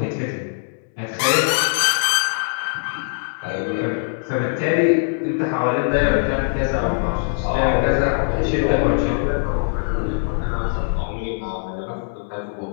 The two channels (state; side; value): silent; right; digital silence